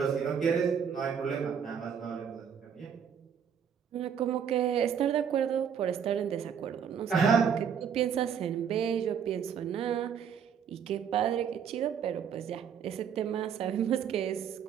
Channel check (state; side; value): quieter; left; 7.7 dB